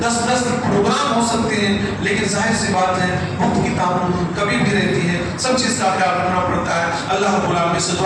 10 پروگرام ہو سکتے ہیں، لیکن ظاہر سی بات ہے وقت کی تعمیل کبھی بھی رہتی ہے، سب چیز کا خیال رکھنا پڑتا ہے. اللہ رب العالمین سے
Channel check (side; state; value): both; identical; correlation 1.00